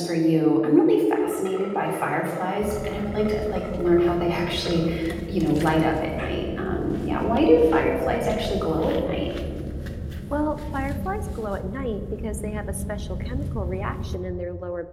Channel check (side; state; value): both; identical; correlation 1.00